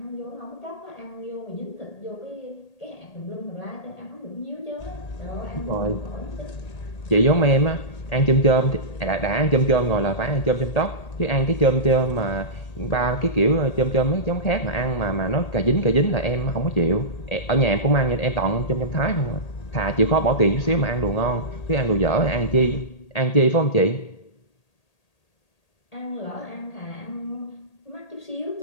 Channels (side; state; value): right; late; 1.8 ms